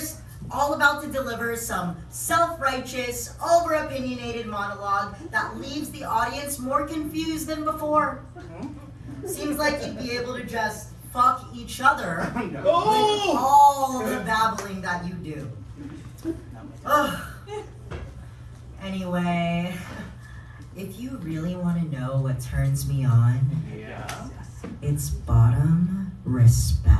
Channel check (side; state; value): both; identical; correlation 1.00